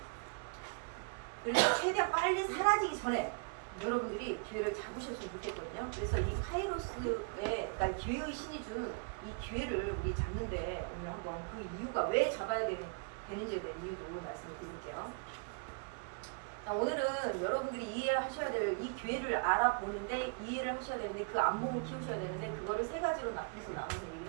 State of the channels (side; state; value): left; quieter; 34.4 dB